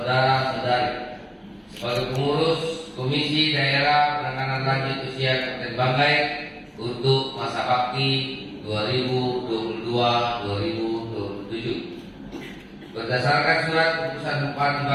sebagai pengurus Komisi Daerah Penanganan Lanjut Usia Kabupaten Banggai untuk masa bakti 2022-2027. Berdasarkan surat keputusan Bupati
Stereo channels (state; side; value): identical; both; correlation 1.00